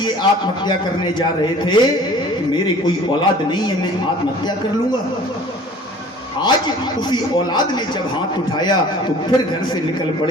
आत्महत्या करने जा रहे थे। मेरे कोई औलाद नहीं है, मैं आत्महत्या कर लूंगा। आज उसी औलाद ने जब हाथ उठाया तो फिर घर से निकल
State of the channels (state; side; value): normal; both; correlation 0.48